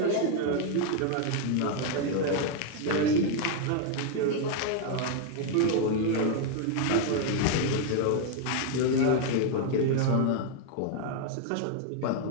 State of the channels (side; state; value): both; different; correlation 0.00